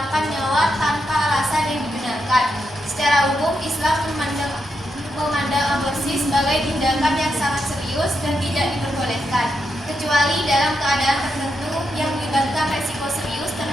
nyawa tanpa alasan yang dibenarkan. Secara umum, Islam memandang aborsi sebagai tindakan yang sangat serius dan tidak diperbolehkan, kecuali dalam keadaan tertentu yang melibatkan resiko serius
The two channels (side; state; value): both; normal; correlation 0.84